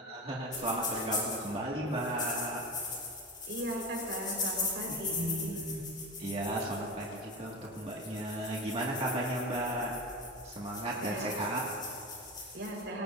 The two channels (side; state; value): both; normal; correlation 0.25